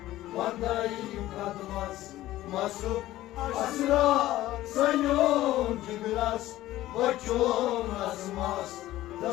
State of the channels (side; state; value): right; quieter; 15.3 dB